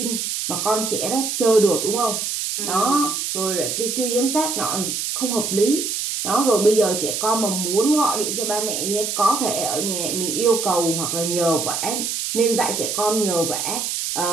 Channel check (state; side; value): noise; right; hiss, 2 dB below the sound